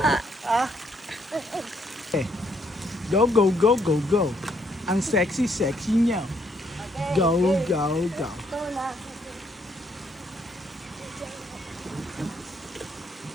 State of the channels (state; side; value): normal; both; correlation 0.71